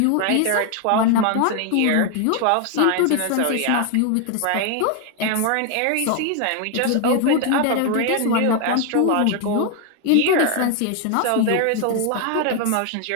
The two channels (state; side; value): different; both; correlation 0.00